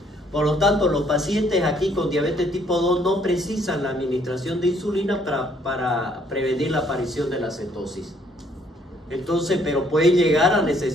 Por lo tanto, los pacientes aquí con diabetes tipo 2 no precisan la administración de insulina para prevenir la aparición de la cetosis. Entonces, pero pueden llegar a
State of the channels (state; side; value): normal; both; correlation 0.65